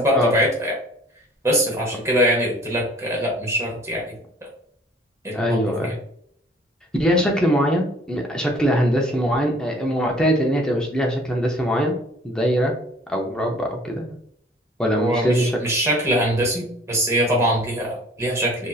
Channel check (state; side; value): normal; both; correlation 0.52